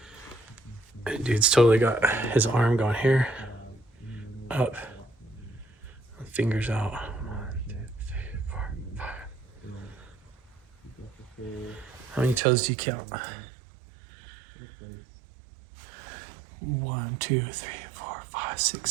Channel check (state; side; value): drops out; left; at 12.4 s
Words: Dude's totally got his arm going here, up, fingers out. 1, 2, 3, 4, 5. How many toes do you count? 1, 2, 3, 4, 5, 6,